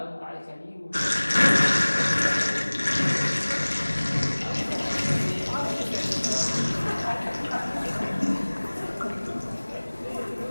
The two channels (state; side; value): inverted; both; correlation -1.00